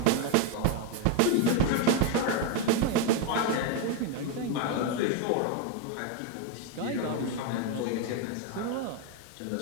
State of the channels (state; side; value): different; both; correlation 0.02